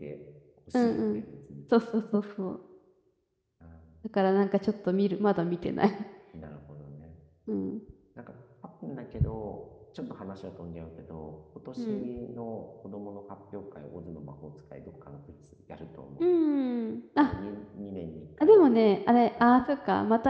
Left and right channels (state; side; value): identical; both; correlation 1.00